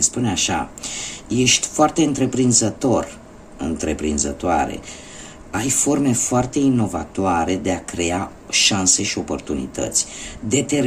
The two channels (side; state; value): both; identical; correlation 1.00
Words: spune așa: ești foarte întreprinzătoare, ai forme foarte inovatoare de a crea șanse și oportunități.